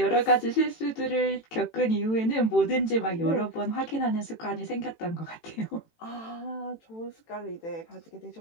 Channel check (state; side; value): late; right; 18 ms